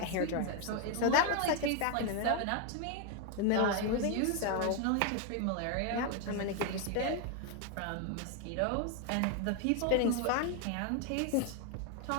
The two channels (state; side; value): different; both; correlation 0.01